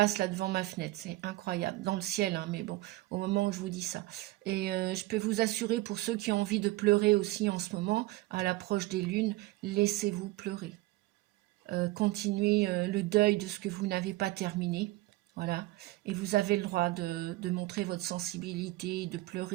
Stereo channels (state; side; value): quieter; left; 18.5 dB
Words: là devant ma fenêtre. C'est incroyable. Dans le ciel, hein, mais bon, au moment où je vous dis ça. Et je peux vous assurer, pour ceux qui ont envie de pleurer aussi en ce moment, à l'approche des lunes, laissez-vous pleurer. Continuez le deuil de ce que vous n'avez pas terminé. Voilà. Et vous avez le droit de montrer votre sensibilité, de